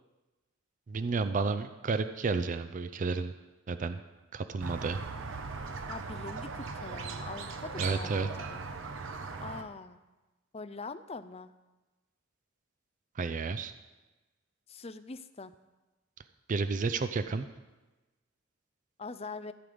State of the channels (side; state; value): left; quieter; 3.5 dB